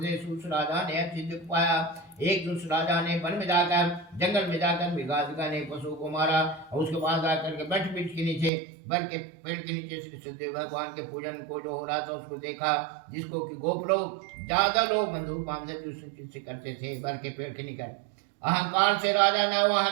सूस राजा ने अति दुख पाया। एक दूसरे राजा ने वन में जाकर जंगल में जाकर मृगाधिका ने पशु को मारा और उसके बाद आकर के बैठ वृक्ष के नीचे बर के पेड़ के नीचे श्री सददेव भगवान के पूजन को जो हो रहा था उसको देखा, जिसको कि गोप लोग ज्यादा लोग बंधु बांधव से करते थे बर के पेड़ के निकट। अहंकार से राजा ने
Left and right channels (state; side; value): drops out; left; at 8.5 s